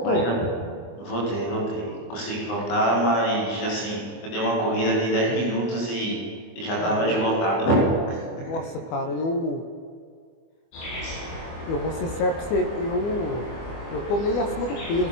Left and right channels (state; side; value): late; right; 25 ms